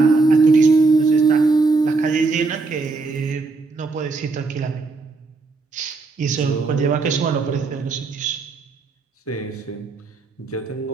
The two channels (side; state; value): left; quieter; 3.9 dB